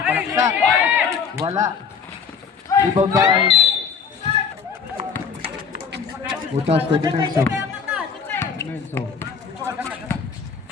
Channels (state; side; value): quieter; right; 6.1 dB